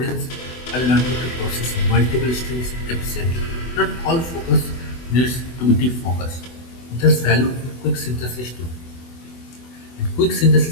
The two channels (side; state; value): right; late; 24 ms